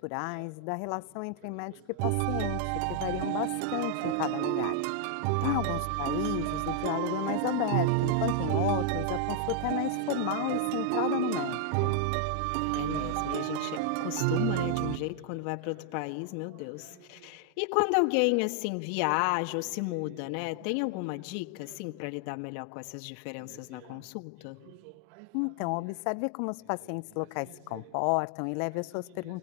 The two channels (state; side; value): different; both; correlation 0.00